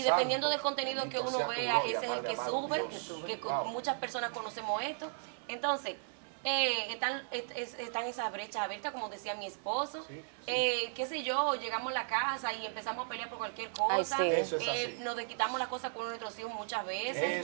dependiendo santo. del contenido Bendito que uno sea tu vea, gloria, ese es el Padre que amado. sube. Es el que sube. Que Wow. muchas personas conocemos esto. Entonces, están esas brechas abiertas, como decía mi esposo. Sí, Qué sé yo, llegamos a la casa y empezamos a pelear por cualquier cosa. sí. Eso es así. Nos desquitamos las cosas con nuestros hijos muchas veces.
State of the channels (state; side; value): silent; left; digital silence